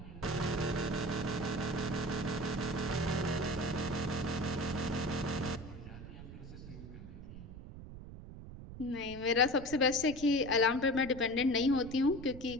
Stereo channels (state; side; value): noise; right; rumble, 13 dB below the sound